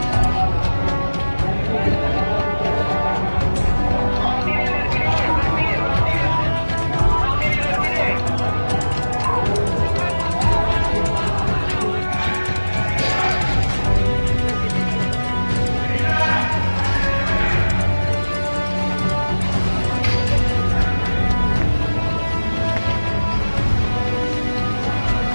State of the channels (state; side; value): inverted; both; correlation -1.00